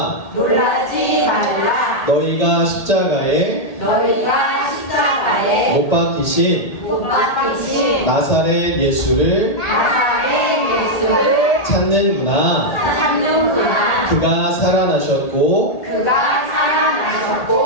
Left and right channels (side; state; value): right; late; 1.8 ms